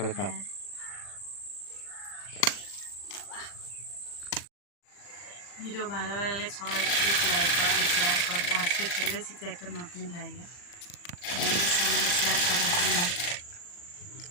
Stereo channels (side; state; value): right; late; 40 ms